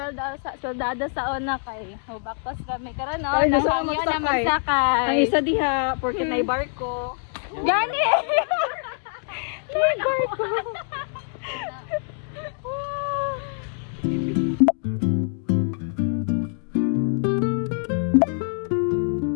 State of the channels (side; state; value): right; silent; 62 dB below the other